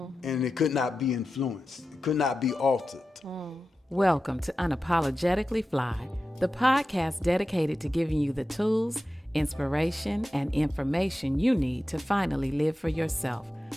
and it could not be influenced, it could not be altered. Welcome to Unapologetically Fly, the podcast dedicated to giving you the tools, inspiration, and information you need to finally live for yourself,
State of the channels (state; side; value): normal; both; correlation 0.92